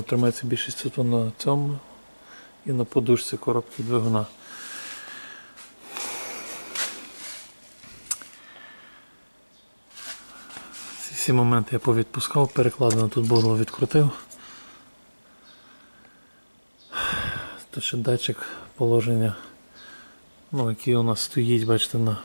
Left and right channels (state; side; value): inverted; both; correlation -1.00